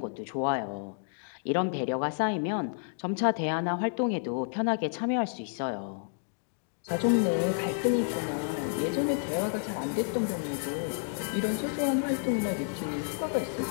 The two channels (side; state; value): right; silent; digital silence